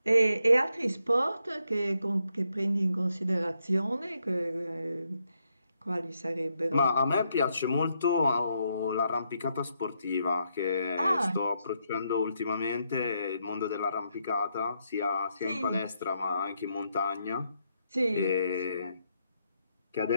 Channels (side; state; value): both; inverted; correlation -0.79